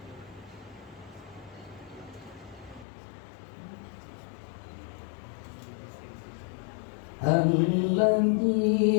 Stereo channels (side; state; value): right; drops out; at 2.9 s